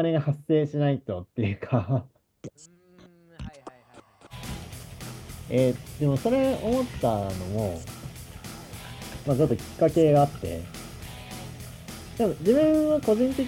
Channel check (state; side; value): identical; both; correlation 1.00